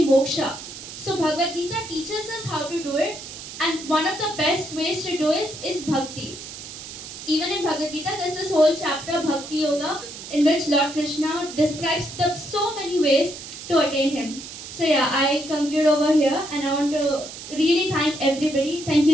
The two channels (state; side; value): noise; right; hiss, 12 dB below the sound